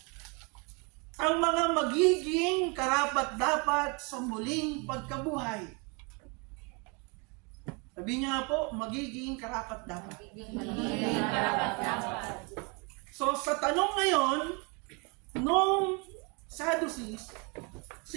ang mga magiging karapat-dapat sa muling pagkabuhay. Sabihin niyo nga po, magiging karapat-dapat. Magiging karapat-dapat. So sa tanong ngayon, nung Sadducees,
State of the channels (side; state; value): left; quieter; 31.8 dB